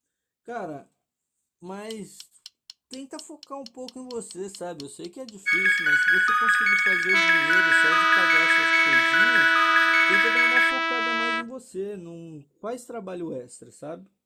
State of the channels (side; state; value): both; identical; correlation 1.00